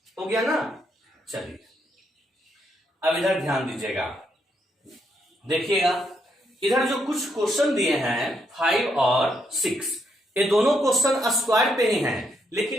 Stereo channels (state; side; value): normal; both; correlation 0.76